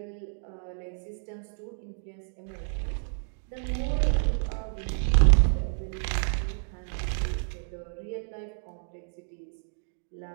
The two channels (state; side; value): silent; left; digital silence